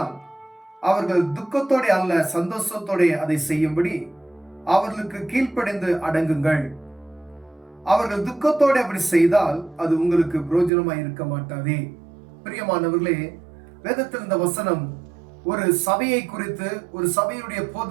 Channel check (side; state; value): left; drops out; at 10.7 s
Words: அவர்கள் துக்கத்தோட அல்ல சந்தோஷத்தோட அதை செய்யும்படி அவர்களுக்கு கீழ்ப்படிந்து அடங்குங்கள். அவர்கள் துக்கத்தோட அப்படி செய்தால் அது உங்களுக்கு பிரயோஜனமாய் இருக்க மாட்டாதே. பிரியமானவர்களே, வேதத்தில் இந்த வசனம் ஒரு சபையை குறித்து, ஒரு சபையுடைய